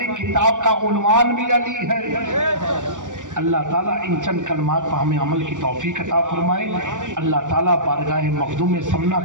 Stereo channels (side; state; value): left; late; 0.87 ms